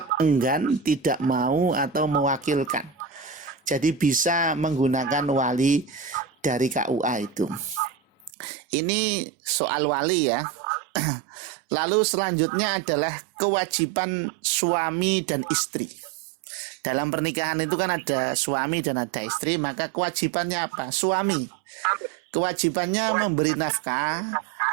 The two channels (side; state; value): left; drops out; at 8.3 s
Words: enggan, tidak mau atau mewakilkan. Jadi bisa menggunakan wali dari KUA itu. Ini soal wali ya. Lalu selanjutnya adalah kewajiban suami dan istri. Dalam pernikahan itu kan ada suami dan ada istri, maka kewajibannya apa? Suami. Kewajibannya memberi nafkah,